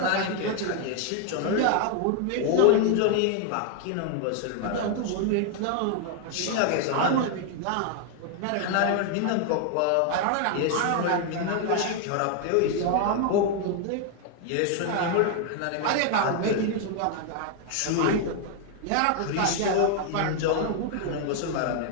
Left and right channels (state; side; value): different; both; correlation 0.00